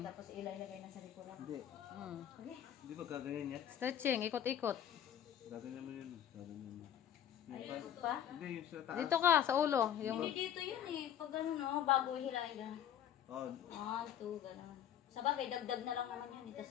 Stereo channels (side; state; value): right; quieter; 10.2 dB